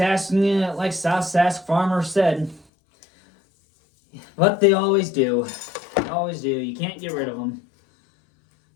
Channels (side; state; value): right; drops out; at 2.7 s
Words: Sask Farmer said, but they always do. They always do. You can't get rid of them.